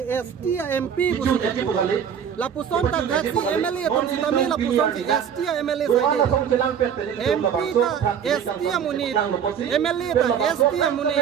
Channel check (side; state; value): left; quieter; 8.1 dB